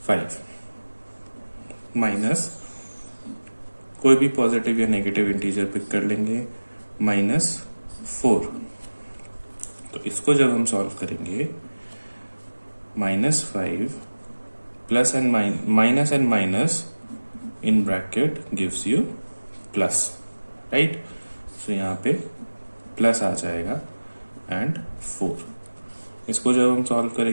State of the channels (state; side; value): inverted; both; correlation -1.00